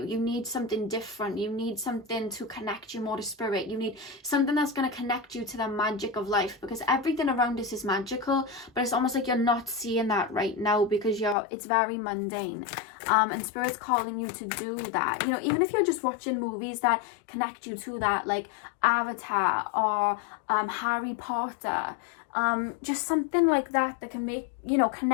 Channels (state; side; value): drops out; right; at 11.4 s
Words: You need something different. You need something to connect you more to spirit. You need something that's going to connect you to the magic of life, because everything around us is magical, but it's almost like you're not seeing that right now because it's very mundane. And spirit's calling you to do that. You know, even if you're just watching movies that connect you to that, like Avatar or Harry Potter, just something like that can make, you know,